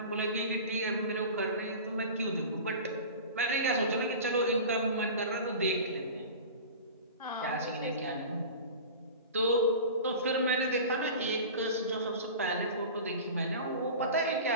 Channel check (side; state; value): both; inverted; correlation -0.34